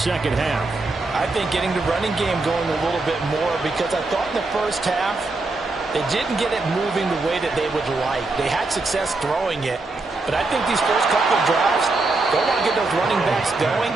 half? I think getting the running game going a little bit more, because I thought in the first half they didn't get it moving the way that they would like. They had success throwing it, but I think these first couple of drives, they want to get those running backs going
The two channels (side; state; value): left; quieter; 3.4 dB